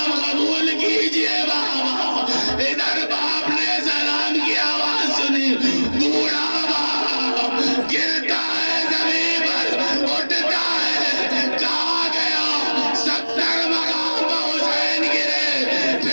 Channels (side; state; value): both; inverted; correlation -1.00